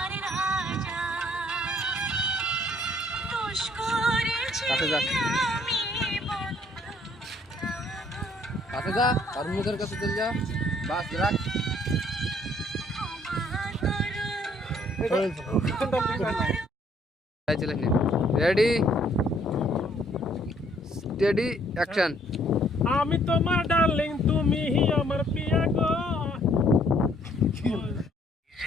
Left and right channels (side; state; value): both; normal; correlation 0.64